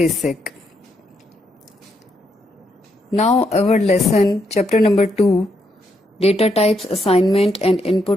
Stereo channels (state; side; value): normal; both; correlation 0.78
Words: Now our lesson, chapter number 2, data types, assignment and